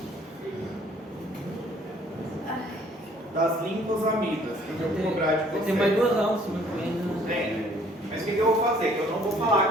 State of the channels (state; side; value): normal; both; correlation 0.58